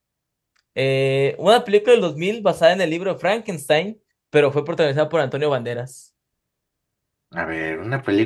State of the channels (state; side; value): identical; both; correlation 1.00